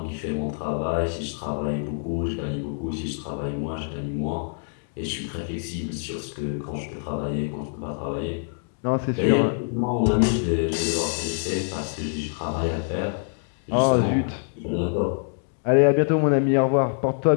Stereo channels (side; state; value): right; silent; 62 dB below the other